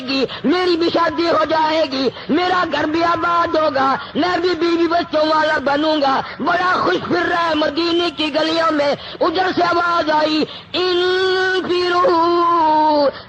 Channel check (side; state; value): both; identical; correlation 1.00